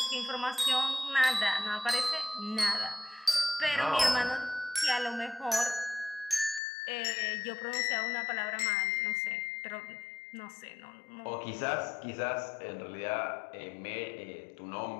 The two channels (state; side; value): drops out; right; at 6.6 s